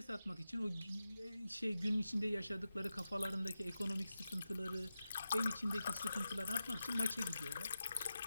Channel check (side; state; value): both; inverted; correlation -0.91